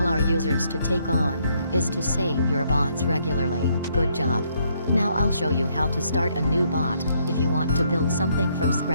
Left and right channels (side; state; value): both; inverted; correlation -0.71